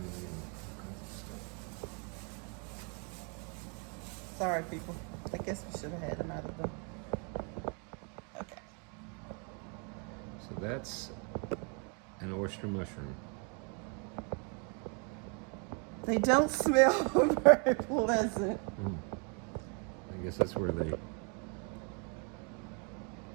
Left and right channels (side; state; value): left; quieter; 37.0 dB